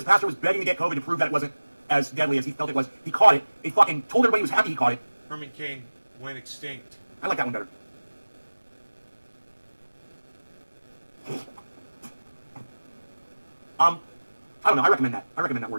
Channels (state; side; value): inverted; both; correlation -1.00